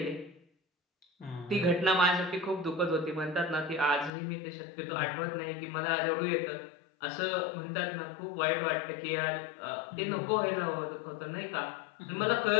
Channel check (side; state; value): right; drops out; at 4.1 s